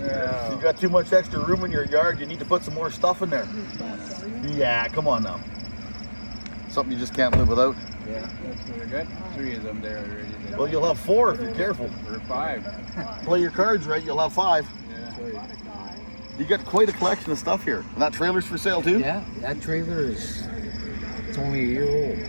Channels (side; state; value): both; inverted; correlation -1.00